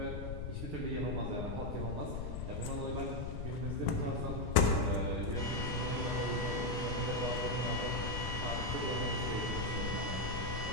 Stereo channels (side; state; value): left; noise; rumble, 4 dB below the sound